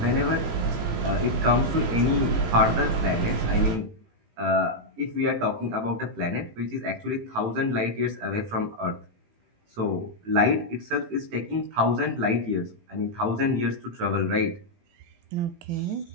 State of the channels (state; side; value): late; left; 18 ms